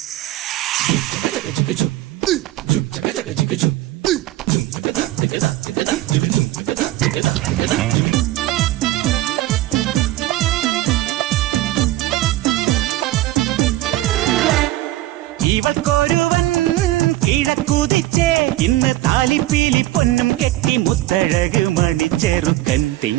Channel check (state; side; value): quieter; left; 15.9 dB